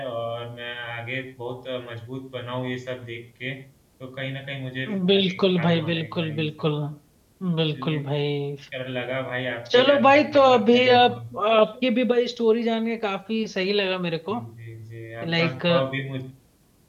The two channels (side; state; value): both; identical; correlation 1.00